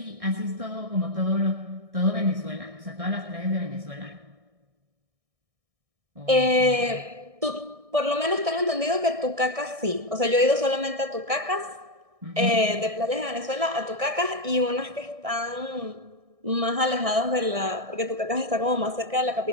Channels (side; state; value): left; late; 1.6 ms